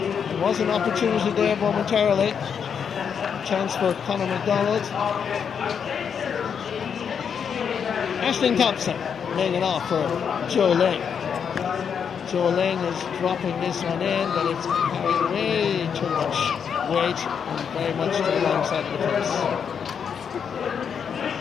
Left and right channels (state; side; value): quieter; right; 7.2 dB